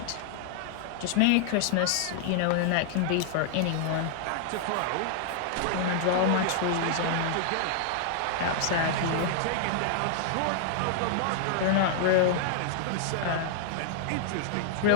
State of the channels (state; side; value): different; both; correlation -0.01